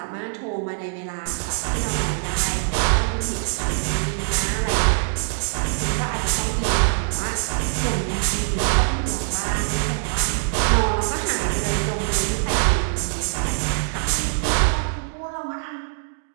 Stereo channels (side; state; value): left; silent; digital silence